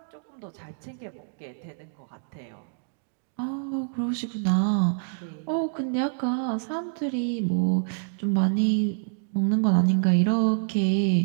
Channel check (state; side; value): silent; left; digital silence